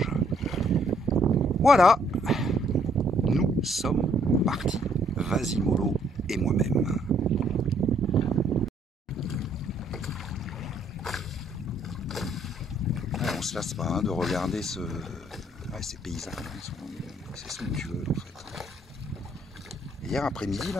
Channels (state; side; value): normal; both; correlation 0.67